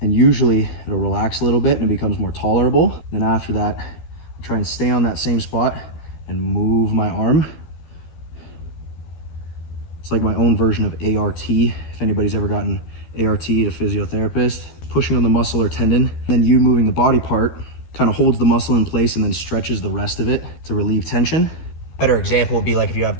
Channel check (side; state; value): right; late; 13 ms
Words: and usually it'll relax a little bit and it becomes more tolerable. Then after that, I try and stay on that same spot and move my arm. It's like my own version of ART. If anybody's ever gotten ART at a physiotherapist, pushing on the muscle or tendon, then you moving the body part kind of holds the muscle in place and then stretches the rest of it to relieve tension. Better example would be like if you have